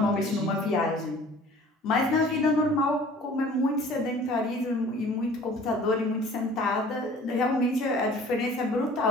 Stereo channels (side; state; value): both; normal; correlation 0.49